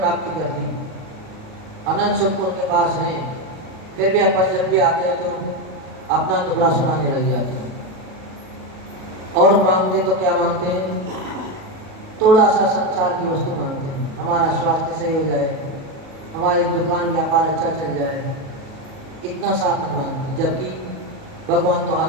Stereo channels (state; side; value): late; left; 37 ms